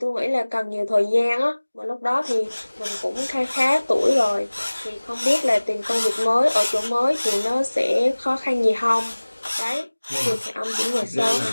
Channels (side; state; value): both; inverted; correlation -1.00